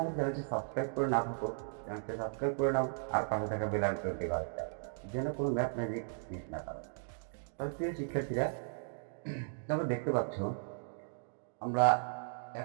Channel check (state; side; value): silent; left; digital silence